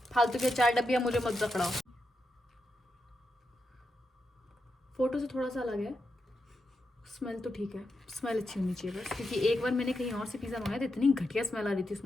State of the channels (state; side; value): normal; both; correlation 0.86